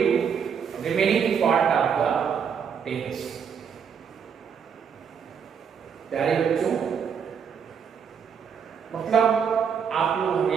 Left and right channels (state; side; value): quieter; left; 7.1 dB